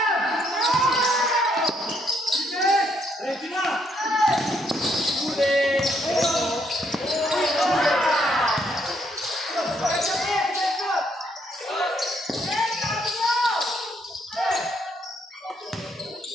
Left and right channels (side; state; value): both; normal; correlation 0.72